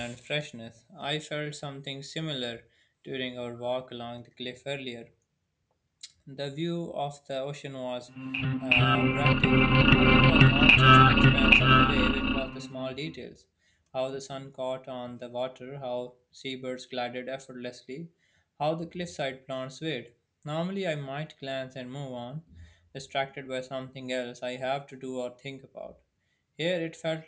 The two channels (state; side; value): identical; both; correlation 1.00